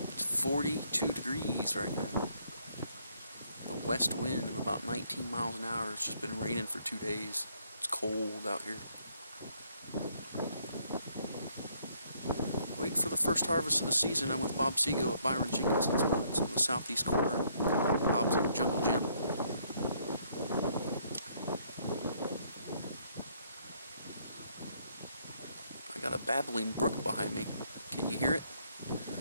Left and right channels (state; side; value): inverted; both; correlation -0.68